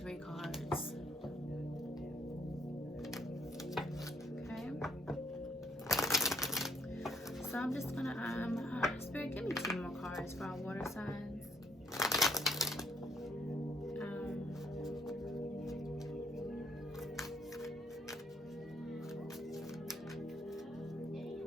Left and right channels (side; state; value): both; normal; correlation 0.68